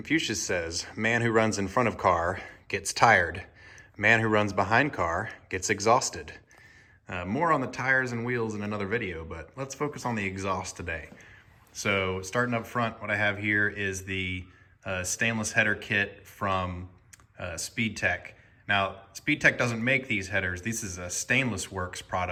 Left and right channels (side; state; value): both; identical; correlation 1.00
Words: says, man who runs in front of car gets tired. Man who runs behind car gets exhausted. More on the tires and wheels in another video, but let's focus on the exhaust today. So starting up front, what I have here is the stainless header kit from SpeedTech. Now, SpeedTech doesn't make these headers. This is a Stainless Works